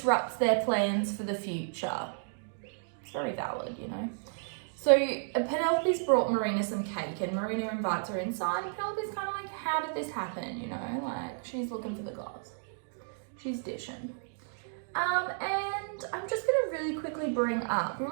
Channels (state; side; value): silent; left; digital silence